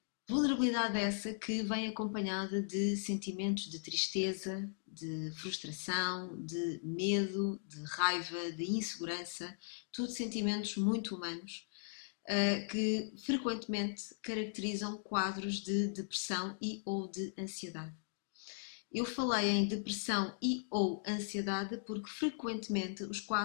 Vulnerabilidade essa que vem acompanhada de sentimentos de tristeza, de frustração, de medo, de raiva, de insegurança, tudo sentimentos muito humanos que frequentemente caracterizam quadros de depressão e ou de ansiedade. Eu falei em depressão e ou ansiedade porque frequentemente os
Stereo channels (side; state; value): right; silent; digital silence